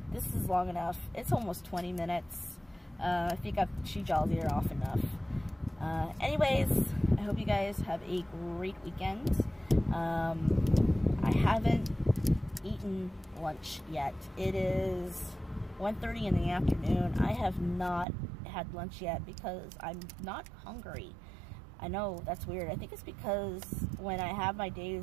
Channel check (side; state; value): left; drops out; at 18.1 s